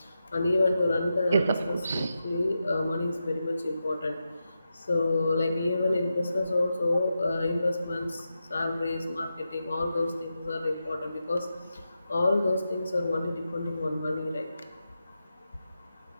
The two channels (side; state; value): both; inverted; correlation -0.89